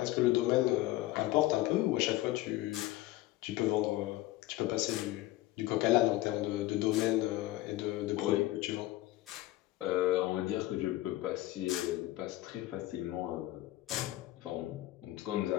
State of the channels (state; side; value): quieter; right; 16.8 dB